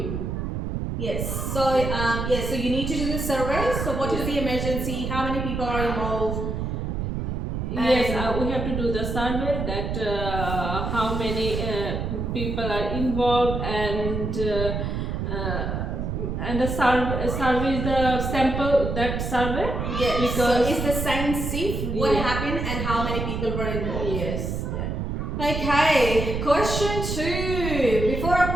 Yes. So so you need to do the survey. So what is the emergency? How many people are involved? Yes, we have to do the survey that how many people are involved, and the survey is the sample that survey. Yes. Because so is the science safe? What happened and how many people were involved? Yes. Okay. Question 2. Before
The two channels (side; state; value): right; noise; rumble, 3 dB below the sound